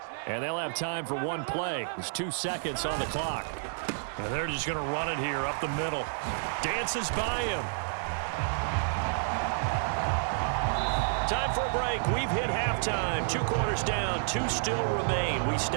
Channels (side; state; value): left; silent; digital silence